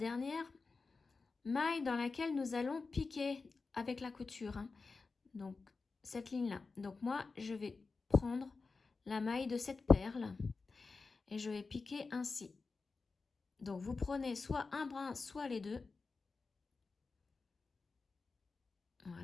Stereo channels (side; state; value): right; quieter; 4.2 dB